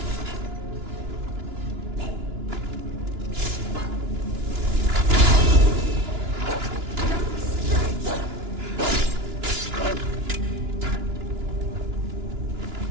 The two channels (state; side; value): late; left; 2.9 ms